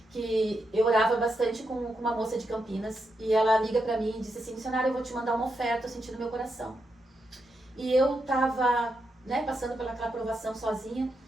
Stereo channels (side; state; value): both; normal; correlation 0.84